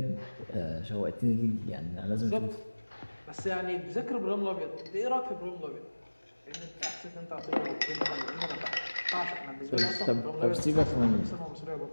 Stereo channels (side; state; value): both; inverted; correlation -1.00